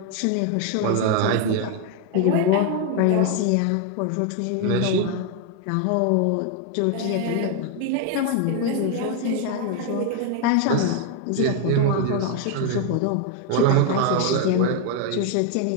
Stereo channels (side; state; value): both; different; correlation 0.01